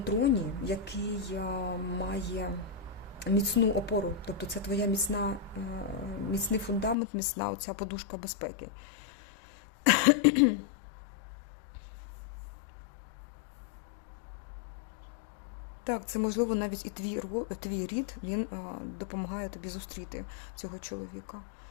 який має міцну опору. Тобто це твоя міцний фундамент, міцна оця подушка безпеки. Так, це можливо навіть і твій рід, він допомагає тобі зустріти цього чоловіка.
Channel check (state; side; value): drops out; right; at 7.0 s